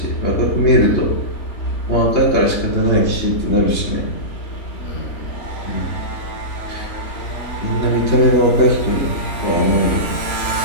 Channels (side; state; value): right; late; 3.2 ms